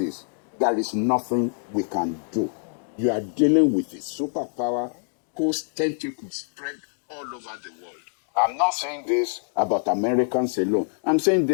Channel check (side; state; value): right; silent; digital silence